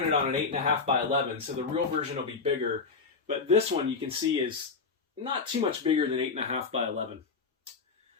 on an 8.5 by 11, so the real version will be bigger. But this one you can see is not too much bigger than 8.5 by 11.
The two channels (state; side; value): quieter; right; 4.8 dB